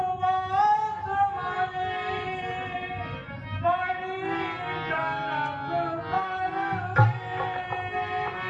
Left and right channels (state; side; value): identical; both; correlation 1.00